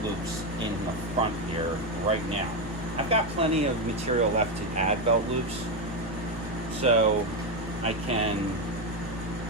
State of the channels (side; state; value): both; normal; correlation 0.09